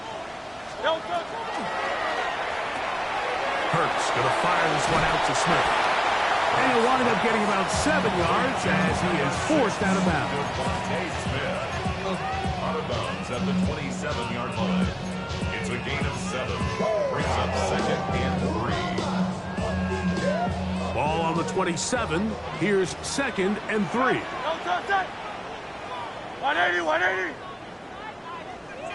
Don't touch it. Hurts going to fire this one out to Smith. And he'll wind up getting about 7 yards as he is forced out of bounds. Out of bounds at the 27-yard line. It's a gain of 7. Brings up 2nd and 3. Ball on the 27. Here's 2nd and 3. Don't touch it. 180, 180.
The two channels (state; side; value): identical; both; correlation 1.00